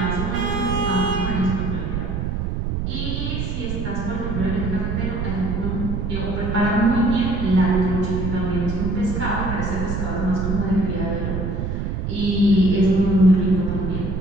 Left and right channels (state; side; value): noise; right; rumble, 2 dB below the sound